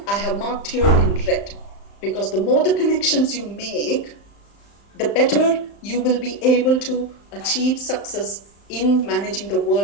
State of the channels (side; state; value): right; late; 35 ms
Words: I have marked here in red, because the more the connections you make, the better you will be able to achieve success in managing the